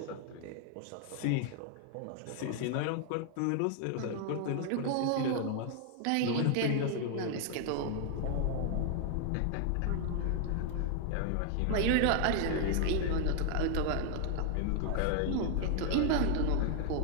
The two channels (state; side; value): different; both; correlation 0.00